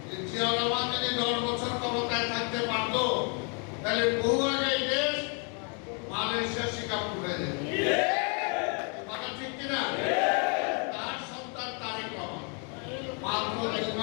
যে জিয়া রহমান যদি 10 বছর ক্ষমতায় থাকতে পারত, তাহলে বহু আগে এই দেশ মালয়েশিয়া সিঙ্গাপুর হয়ে যেত। কথা ঠিক কিনা? তার সন্তান তারেক রহমান মাত্র 2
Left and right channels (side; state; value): right; quieter; 37.7 dB